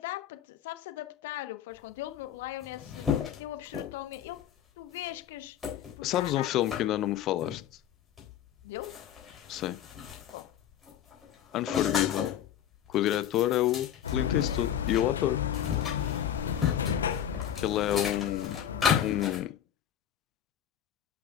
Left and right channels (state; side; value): quieter; right; 10.4 dB